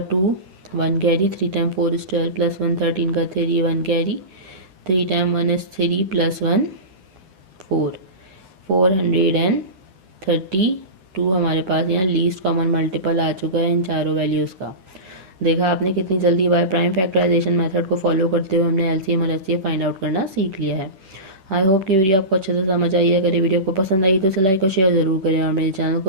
2, 1 कैरी, 3 टाइम 4 इज़ 12 प्लस 1 13 का 3, 1 कैरी, 3 टाइम 1 इज़ 3 प्लस 1 4, 432 हमारे पास यहाँ लीस्ट कॉमन मल्टीपल आ चुका है इन चारों वैल्यूज़ का। देखा आपने कितनी जल्दी बाय प्राइम फैक्टराइजेशन मेथड को फॉलो करते हुए हमने एलसीएम और एचसीएफ फाइंड आउट करना सीख लिया है। आई होप कि वीडियो आपको अच्छे से समझ आई है। अगर ये वीडियो आपको पसंद आई तो उसे लाइक और शेयर ज़रूर करें, और मेरे चैनल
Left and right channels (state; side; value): late; left; 10 ms